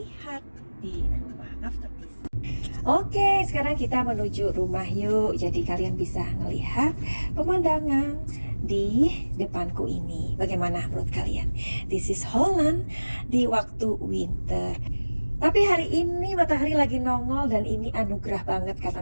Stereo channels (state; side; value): inverted; both; correlation -1.00